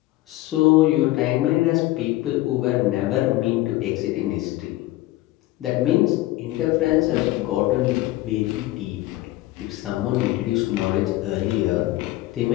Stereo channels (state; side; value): quieter; right; 17.2 dB